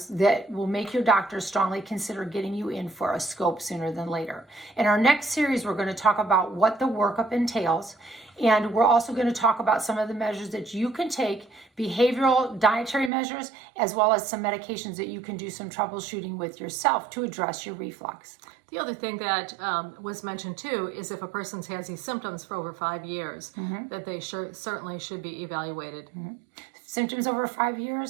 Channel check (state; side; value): drops out; left; at 13.1 s